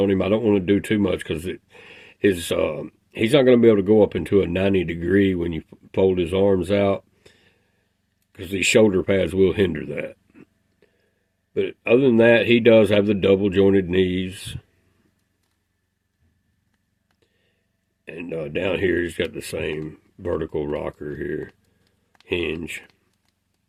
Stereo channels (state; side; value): identical; both; correlation 1.00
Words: him. I don't want to do too much because he's not going to be able to go up into a 90 degree when you fold his arms out, because these shoulder pads will hinder that. But other than that, he does have the double jointed knees. And down here, he's got the same vertical rocker here, hinge.